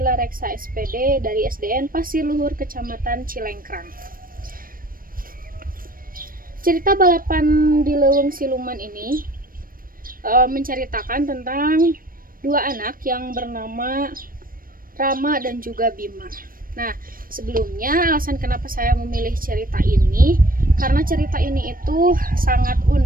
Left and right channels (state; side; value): late; left; 0.41 ms